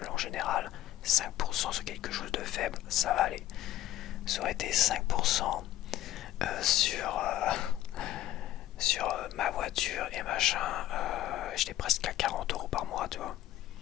en général, 5% sur quelque chose de faible, ça va aller. Ça aurait été 5% sur ma voiture et machin, j'étais presque à 40 € par mois, tu vois.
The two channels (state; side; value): quieter; right; 13.8 dB